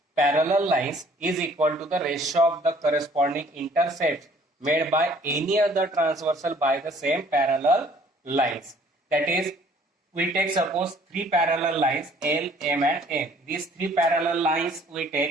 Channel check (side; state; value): both; normal; correlation 0.57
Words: parallel lines is equal to the ratio of the corresponding intercepts made by any other transversal by the same parallel lines. That is, we take suppose three parallel lines L, M and N. These three parallel lines we